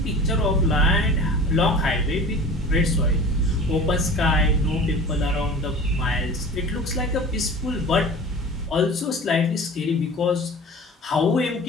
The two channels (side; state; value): both; normal; correlation 0.39